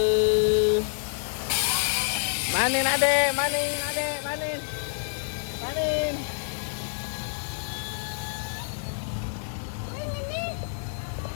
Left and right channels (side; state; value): right; silent; digital silence